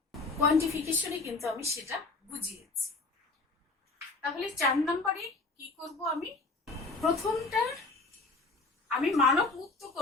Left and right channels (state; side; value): quieter; right; 3.7 dB